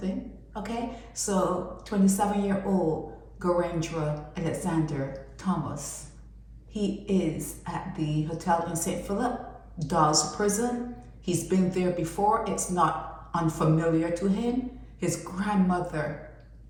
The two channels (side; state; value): both; identical; correlation 1.00